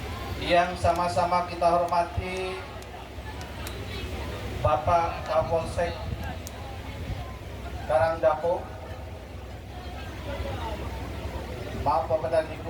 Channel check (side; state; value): both; identical; correlation 1.00